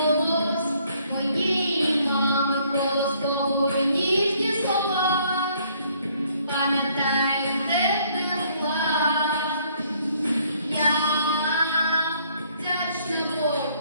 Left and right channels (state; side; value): inverted; both; correlation -0.65